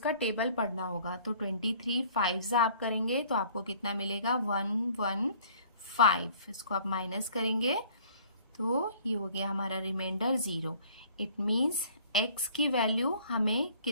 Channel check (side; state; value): both; inverted; correlation -0.54